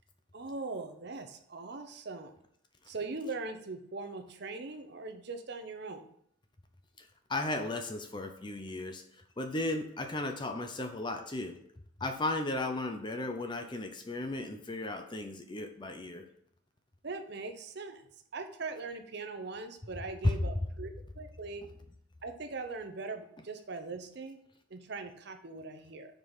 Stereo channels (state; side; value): normal; both; correlation 0.30